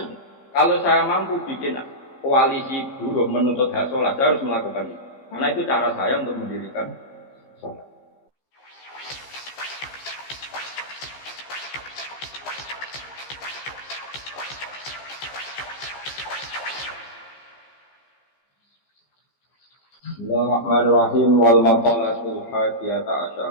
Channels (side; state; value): right; late; 15 ms